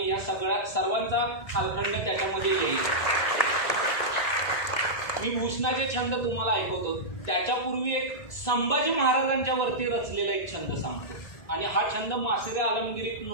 या सर्वांचा कालखंड त्याच्यामध्ये येईल. मी भूषणाचे छंद तुम्हाला ऐकवतो. त्याच्यापूर्वी एक संभाजी महाराजांच्या वरती रचलेला एक छंद सांगतो आणि हा छंद मासिरे आलमगिरीत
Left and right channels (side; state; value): right; late; 1.9 ms